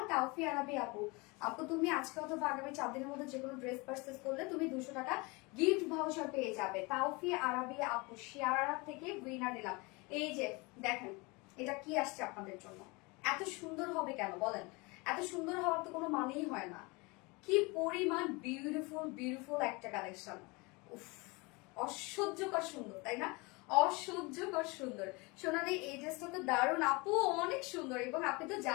তাওফি আরাবি আপু, আপু তুমি আজকে অথবা আগামী 4 দিনের মধ্যে যে কোনো ড্রেস পারচেজ করলে তুমি 200 টাকা গিফট ভাউচার পেয়ে যাবে। তাওফি আরাবি আপু শেয়ার থেকে উইনার নিলাম। এই যে দেখেন এটা কি আসছে আপনাদের জন্য, এত সুন্দর হবে কেন বলেন? এত সুন্দর হওয়ার তো কোনো মানেই হয় না। কি পরিমাণ বিউটিফুল বিউটিফুল একটা কালেকশন, উফ অসহ্যকর সুন্দর তাই না? অসহ্যকর সুন্দর। সোনালি এই ড্রেসটা তো দারুণ আপু, অনেক সুন্দর। এবং আপনি তো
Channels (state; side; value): quieter; right; 26.6 dB